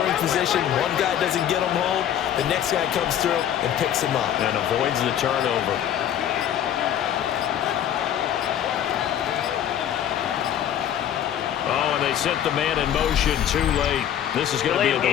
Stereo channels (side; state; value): right; quieter; 10.3 dB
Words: position. One guy doesn't get them home. The next guy comes through and picks him up. And avoids the turnover. Oh, and they set the man in motion too late. This is going to be a